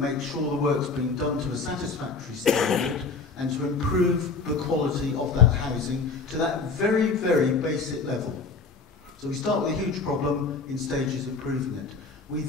make sure the work's been done to a satisfactory standard, and to improve the quality of that housing to that very, very basic level. So we start with a huge problem, in stages improving it. We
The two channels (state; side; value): quieter; right; 4.4 dB